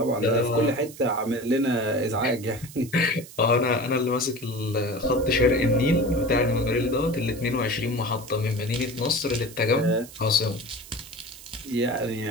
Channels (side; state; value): right; noise; hiss, 17 dB below the sound